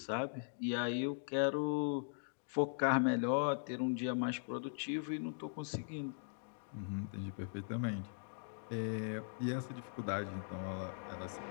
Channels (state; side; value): silent; right; digital silence